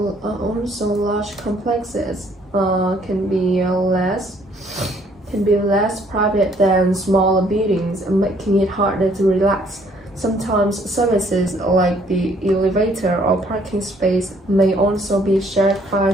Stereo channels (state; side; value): normal; both; correlation 0.63